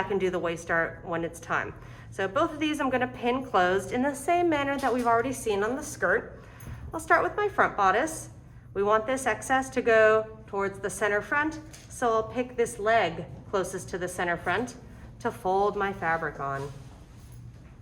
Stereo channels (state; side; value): identical; both; correlation 1.00